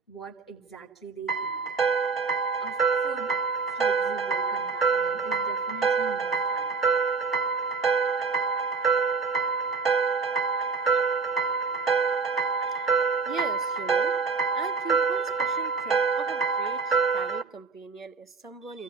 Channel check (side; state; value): left; quieter; 4.7 dB